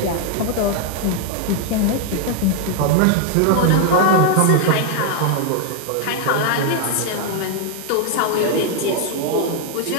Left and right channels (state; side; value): different; both; correlation 0.00